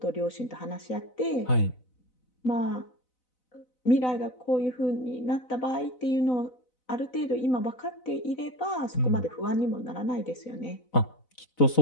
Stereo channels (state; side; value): late; right; 4.0 ms